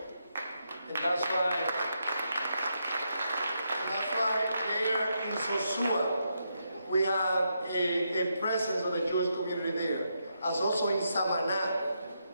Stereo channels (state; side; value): inverted; both; correlation -0.81